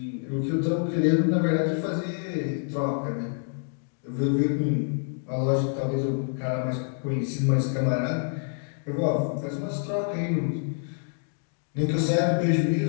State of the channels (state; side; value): silent; right; 60 dB below the other